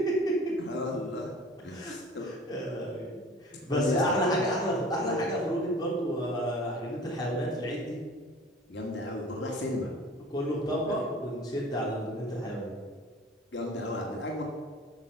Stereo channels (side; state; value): both; normal; correlation 0.44